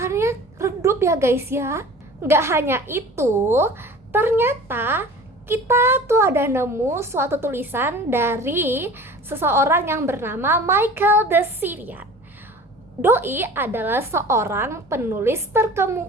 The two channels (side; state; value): both; normal; correlation 0.42